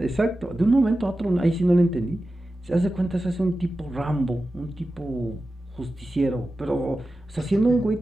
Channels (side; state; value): both; normal; correlation 0.93